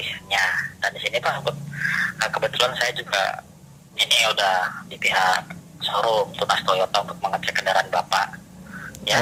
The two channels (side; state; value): both; identical; correlation 1.00